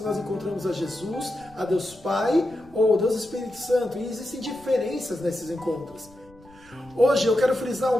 nós encontramos a Jesus, a Deus Pai ou Deus Espírito Santo. E existem diferenças nesses encontros. Hoje eu quero frisar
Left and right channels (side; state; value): left; noise; rumble, 25 dB below the sound